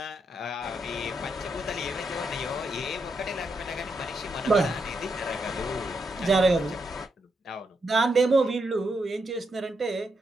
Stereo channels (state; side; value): normal; both; correlation 0.81